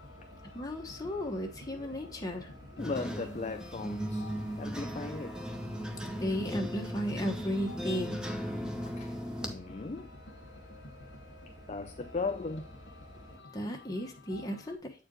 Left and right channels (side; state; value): both; normal; correlation 0.69